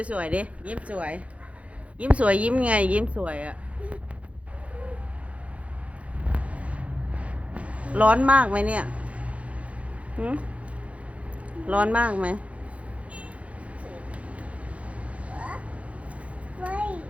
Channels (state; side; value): late; left; 0.064 ms